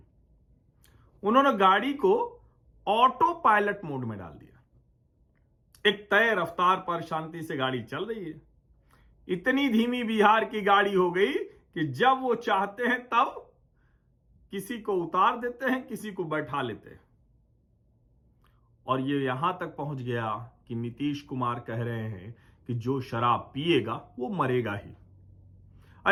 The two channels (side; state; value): both; identical; correlation 1.00